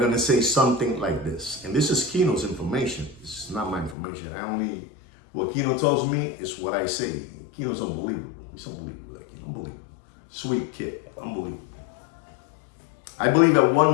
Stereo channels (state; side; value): drops out; right; at 4.0 s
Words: say something like this. And this is Kino's information. This is not my information. What Kino tells me is what I say. Kino's unbelievable. He's unbelievable, like unbelievable. Sweet kid, unbelievable. I believe at one